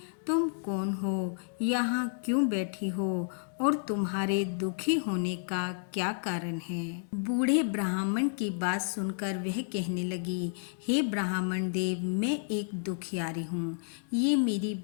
तुम कौन हो, यहाँ क्यों बैठी हो और तुम्हारे दुखी होने का क्या कारण है। बूढ़े ब्राह्मण की बात सुनकर वह कहने लगी, हे ब्राह्मण देव, मैं एक दुखियारी हूँ। ये मेरी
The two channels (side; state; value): right; silent; digital silence